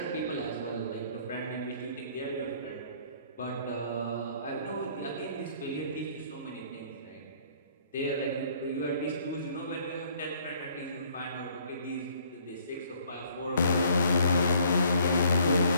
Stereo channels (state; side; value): inverted; both; correlation -0.61